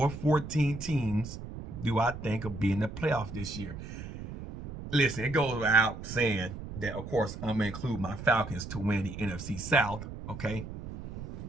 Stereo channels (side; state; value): right; noise; rumble, 10 dB below the sound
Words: 14 teams do I think will be in the playoffs this year? Listen, it goes without saying that, of course, I'm going to include my Falcons to win the NFC South, okay?